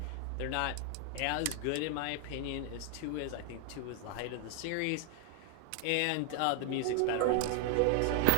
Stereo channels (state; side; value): different; both; correlation 0.00